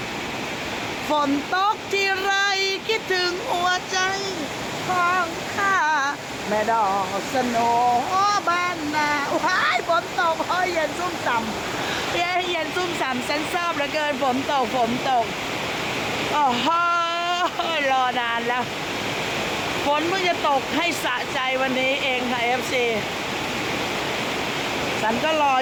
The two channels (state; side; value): identical; both; correlation 1.00